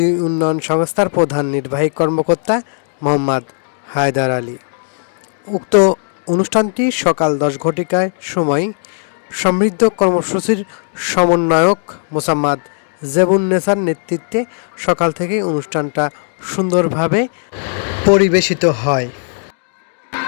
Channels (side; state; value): right; silent; 62 dB below the other